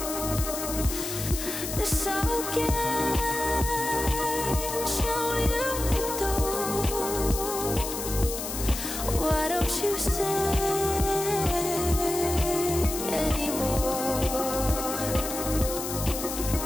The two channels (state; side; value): noise; left; hiss, 6 dB below the sound